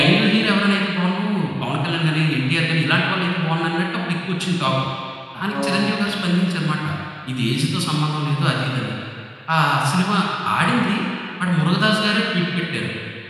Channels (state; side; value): identical; both; correlation 1.00